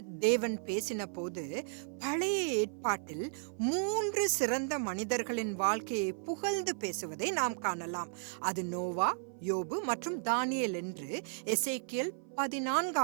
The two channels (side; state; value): left; silent; 55 dB below the other